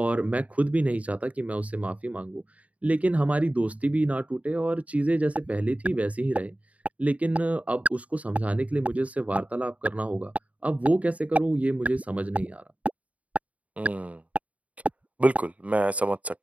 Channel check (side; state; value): left; late; 0.068 ms